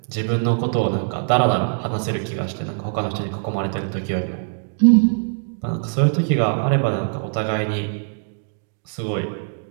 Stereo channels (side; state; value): left; silent; 64 dB below the other